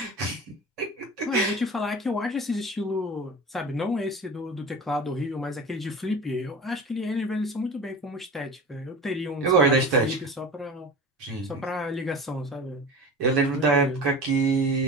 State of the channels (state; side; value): normal; both; correlation 0.34